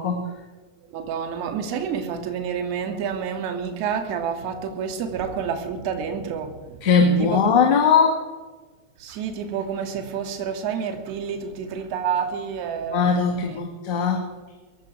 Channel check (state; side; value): late; left; 1.9 ms